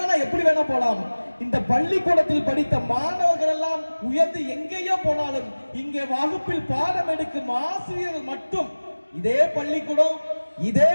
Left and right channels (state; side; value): inverted; both; correlation -1.00